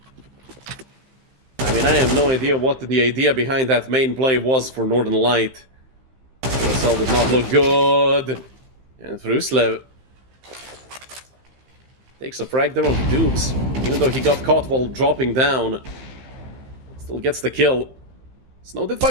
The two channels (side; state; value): left; late; 15 ms